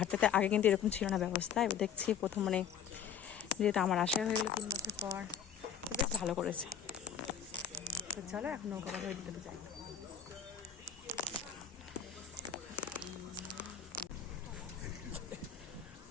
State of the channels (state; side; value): quieter; right; 7.9 dB